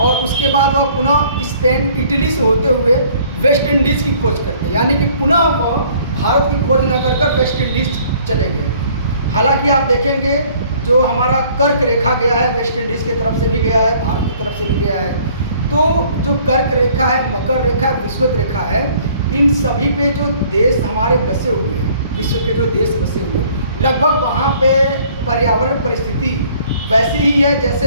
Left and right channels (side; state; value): both; inverted; correlation -0.57